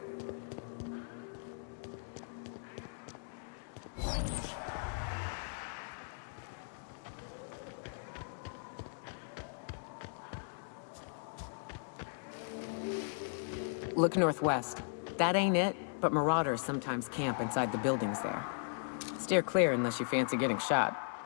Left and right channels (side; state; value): right; silent; digital silence